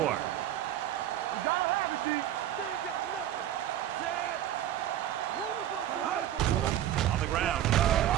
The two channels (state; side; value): quieter; left; 11.8 dB